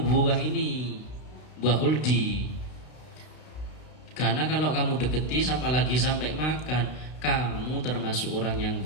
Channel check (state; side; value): late; right; 32 ms